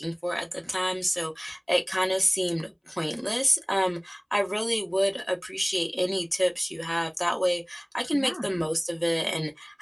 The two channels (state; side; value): identical; both; correlation 1.00